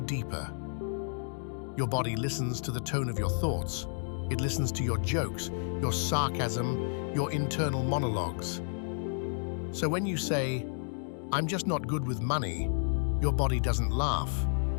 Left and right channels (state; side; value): silent; right; digital silence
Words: Your body listens to the tone of your thoughts. It listens to your jokes, your sarcasm, your internal monologues. So when you say, I'm just not good with money, your body doesn't laugh.